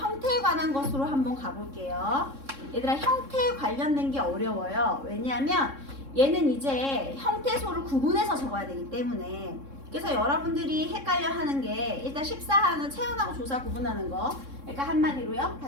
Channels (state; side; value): late; left; 3.6 ms